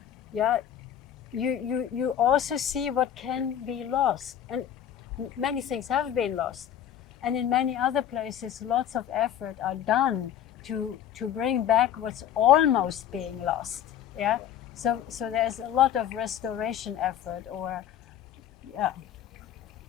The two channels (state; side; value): quieter; right; 10.0 dB